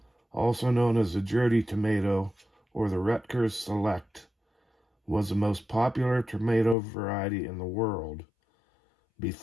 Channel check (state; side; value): drops out; right; at 6.8 s